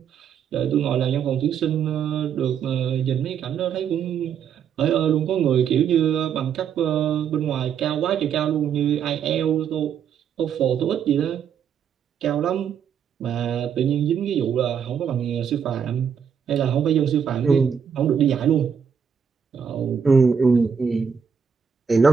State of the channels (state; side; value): quieter; left; 7.4 dB